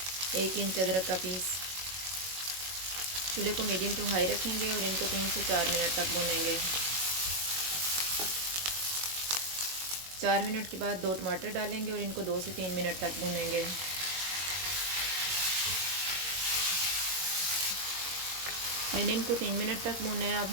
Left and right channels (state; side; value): late; left; 22 ms